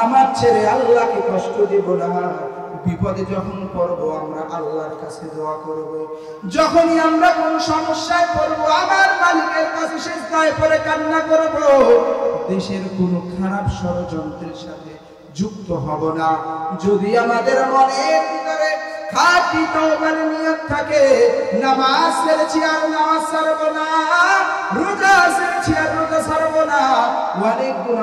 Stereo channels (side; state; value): both; identical; correlation 1.00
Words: ছেড়ে আল্লাহকে কষ্ট দিব না। বিপদে যখন পড়ব আমরা আল্লাহর কাছে দোয়া করব। যখনই আমরা কোন সমস্যায় পড়ব আমার মালিকের কাছে সিজদায় পড়ে কান্না করব। দেশের কোনো খারাপ ষড়যন্ত্রের সাথে যুক্ত হব না। যদি আমাদের মনের ভিতরে খাঁটি তওবার নিয়ত থাকে, নামাজ ছেড়েছি আর নামাজ ছাড়ব না, রোজা ছেড়েছি আর রোজা ছাড়ব না, অনেক